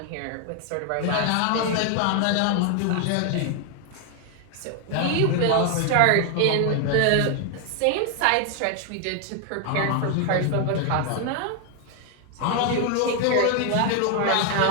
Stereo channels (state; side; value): different; both; correlation 0.00